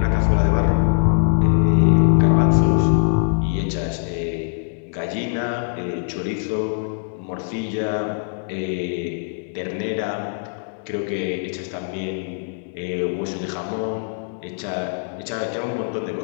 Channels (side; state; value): right; silent; digital silence